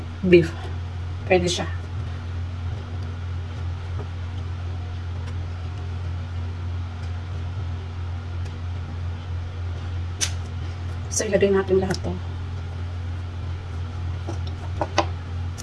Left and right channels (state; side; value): identical; both; correlation 1.00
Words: beef. Pwede siya. So, ilagay natin lahat to.